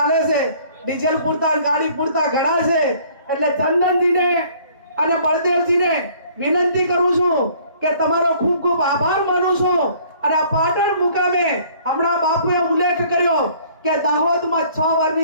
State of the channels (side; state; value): both; inverted; correlation -0.56